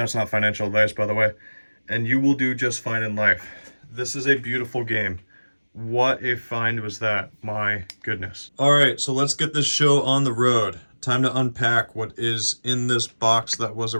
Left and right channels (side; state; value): both; inverted; correlation -1.00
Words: not financial advice, by the way, and you will do just fine in life. This is a beautiful game. What a find was that, my goodness. All right, so let's get this show on the road. Time to unpack what is in this box that was a